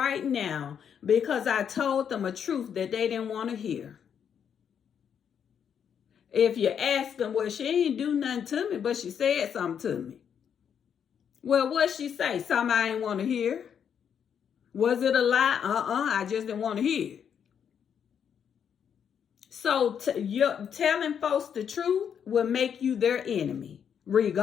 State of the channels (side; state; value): right; quieter; 8.0 dB